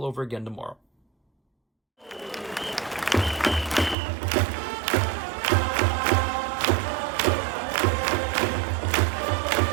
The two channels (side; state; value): left; drops out; at 4.0 s